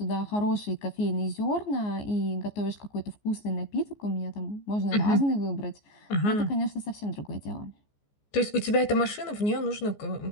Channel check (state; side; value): late; right; 14 ms